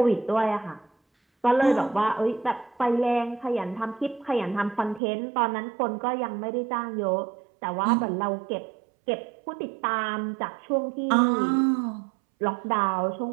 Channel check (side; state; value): left; drops out; at 5.0 s